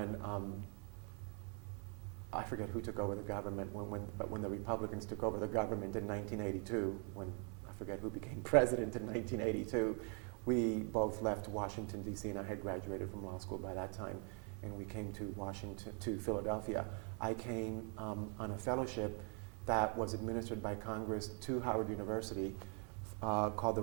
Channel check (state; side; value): quieter; left; 39.3 dB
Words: I forget who took over the government, but when the Republicans took over the government in 1982, when I forget who became president in 1982, we both left Washington, D.C., and I had graduated from law school by that time, and we came to Philadelphia. I came on a fellowship that was administered by Congress to Howard University called the